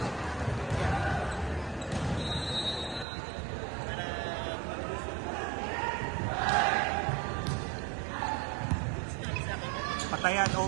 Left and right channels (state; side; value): drops out; left; at 3.1 s